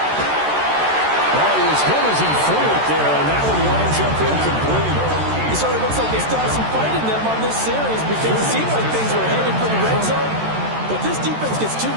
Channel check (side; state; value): left; late; 13 ms